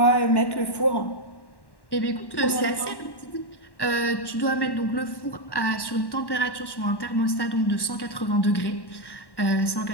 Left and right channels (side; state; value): right; late; 1.1 ms